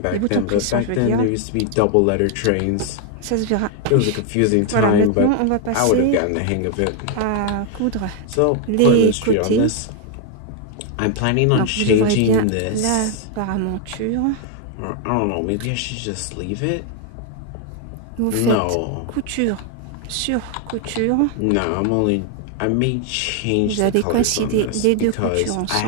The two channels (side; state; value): both; different; correlation 0.00